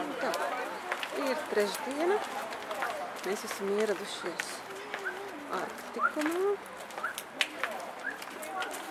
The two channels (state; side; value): identical; both; correlation 1.00